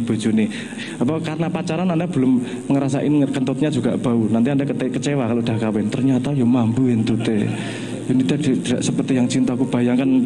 Apa karena pacaran Anda belum ngerasain kentutnya juga bau. Nanti Anda kecewa kalau udah kawin. Ternyata ya mambu entute. Ini tidak seperti yang cintaku bayangkan.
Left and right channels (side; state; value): both; identical; correlation 1.00